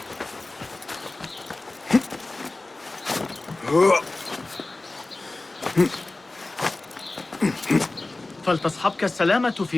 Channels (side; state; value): right; quieter; 3.0 dB